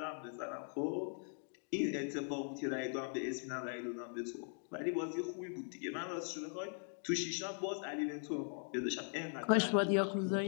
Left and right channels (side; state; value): right; silent; 51 dB below the other